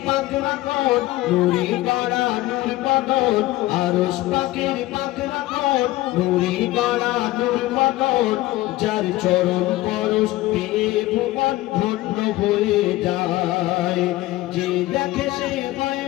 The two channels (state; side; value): quieter; right; 17.3 dB